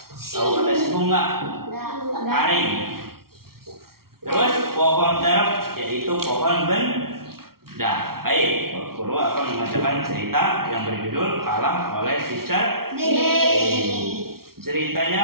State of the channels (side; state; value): left; late; 0.94 ms